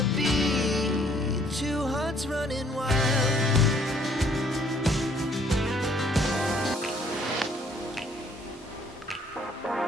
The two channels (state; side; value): normal; both; correlation 0.63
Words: be two hearts running wild.